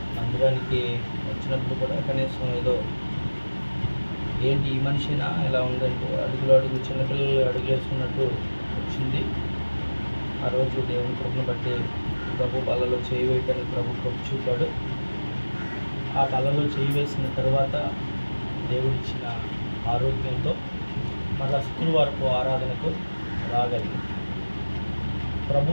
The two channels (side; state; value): both; inverted; correlation -1.00